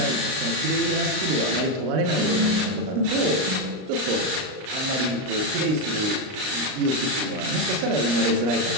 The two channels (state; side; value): late; left; 38 ms